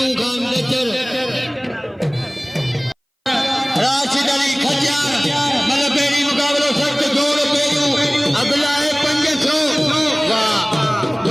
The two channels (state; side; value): identical; both; correlation 1.00